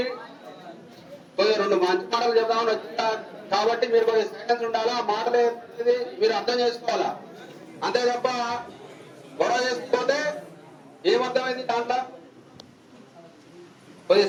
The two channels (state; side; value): identical; both; correlation 1.00